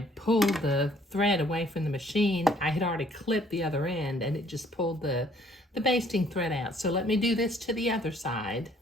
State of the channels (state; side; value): normal; both; correlation 0.61